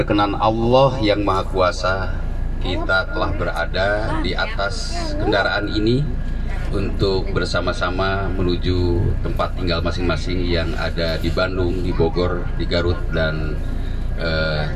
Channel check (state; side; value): identical; both; correlation 1.00